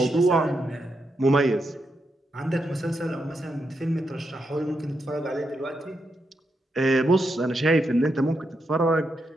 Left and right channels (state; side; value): normal; both; correlation 0.83